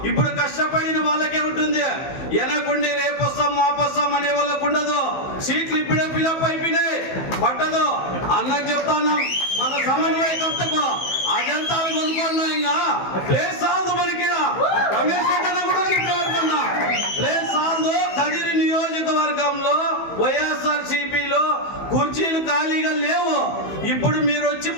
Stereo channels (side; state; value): right; late; 15 ms